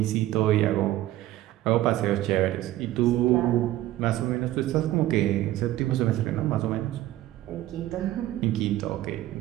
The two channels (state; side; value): quieter; left; 14.9 dB